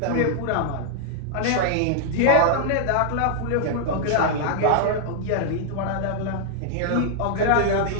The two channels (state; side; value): different; both; correlation -0.01